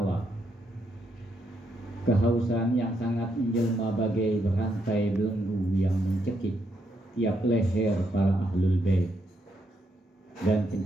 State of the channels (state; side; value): normal; both; correlation 0.78